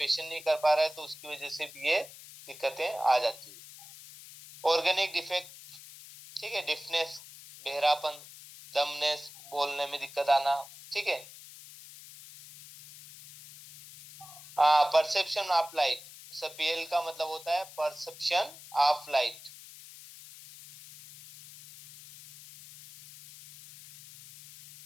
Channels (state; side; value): noise; left; hiss, 17 dB below the sound